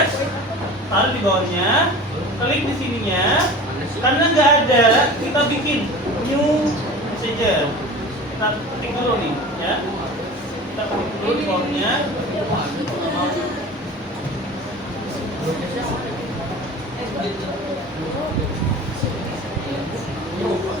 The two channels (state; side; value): normal; both; correlation 0.37